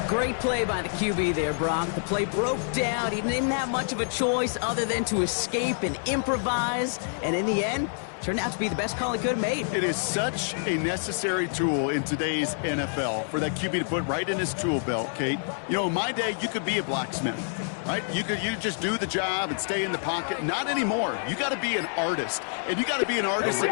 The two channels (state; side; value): silent; right; digital silence